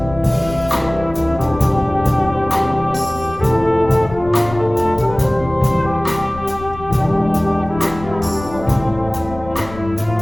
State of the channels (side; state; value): left; noise; rumble, 14 dB below the sound